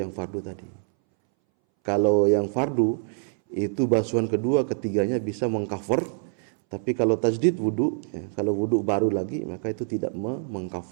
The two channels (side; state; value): left; silent; 61 dB below the other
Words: fardu tadi. Kalau yang fardu itu basuhan kedua ketiganya bisa mengcover, tapi kalau tajdid wudu ya, kalau wudu baru lagi maka itu tidak